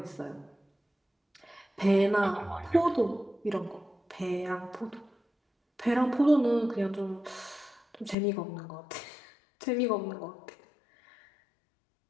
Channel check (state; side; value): drops out; right; at 8.2 s